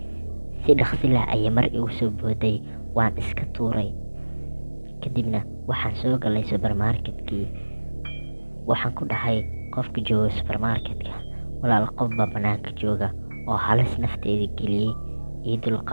Si dhaqsi leh ayay mar igu soo booday, waan iska tuuray. Kadibna waxaan soo galay supermarketkii. Waxaan ku dhahay qofka jooga supermarketka, walaal qof baa banaanka jooga oo halis nafteeda geliyey, ii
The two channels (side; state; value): both; inverted; correlation -1.00